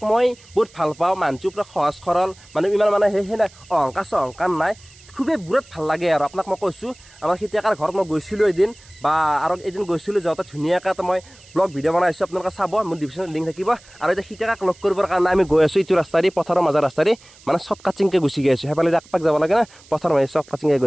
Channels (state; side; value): noise; right; hiss, 25 dB below the sound